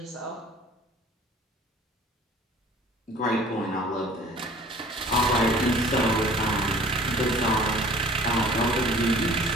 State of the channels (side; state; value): both; normal; correlation 0.49